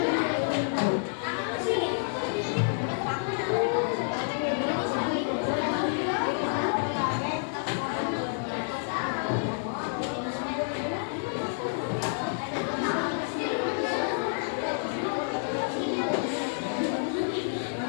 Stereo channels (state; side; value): silent; right; digital silence